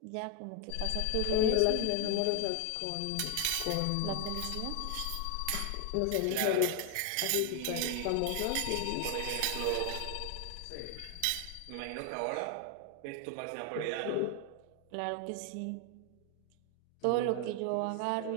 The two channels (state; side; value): different; both; correlation 0.01